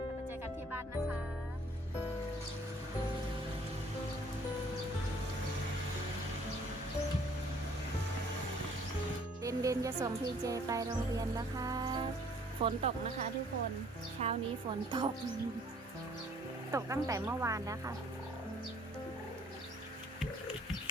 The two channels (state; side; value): normal; both; correlation 0.58